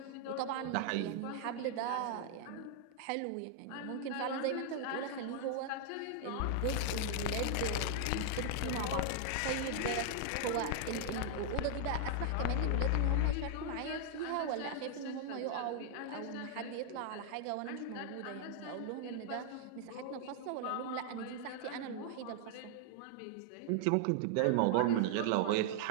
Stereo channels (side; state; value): both; different; correlation 0.00